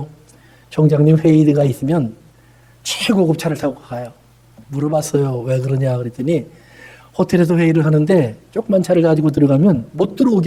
총장님 회의가 있으면 최고급 차를 타고 가요. 물어봤어요. 왜 그러냐 그랬더니 호텔에서 회의를 하는데 조그만 차를 가지고 들어가면 못 들어오게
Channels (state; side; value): identical; both; correlation 1.00